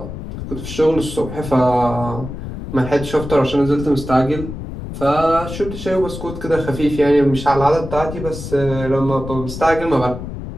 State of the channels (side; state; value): left; noise; rumble, 9 dB below the sound